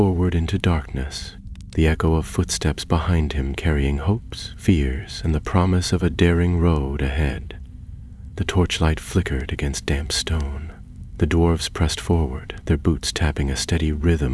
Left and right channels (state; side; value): identical; both; correlation 1.00